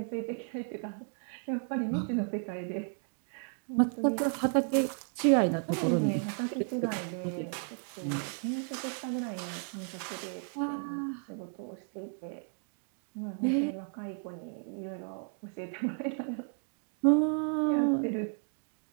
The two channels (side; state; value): left; silent; 55 dB below the other